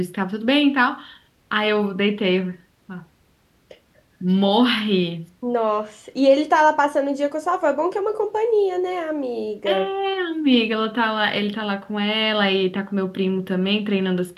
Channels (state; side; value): identical; both; correlation 1.00